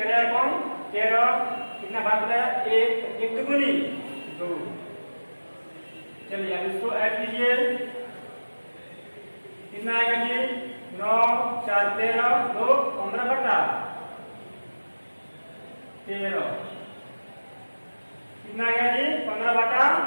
एकम 13 कितना भाग बना 1 1 दुगुनी 2। चलिए अब इसको ऐड कीजिए, कितना आएगा जी 9 4 13 2 15/13 कितना आएगा जी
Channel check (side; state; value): both; inverted; correlation -1.00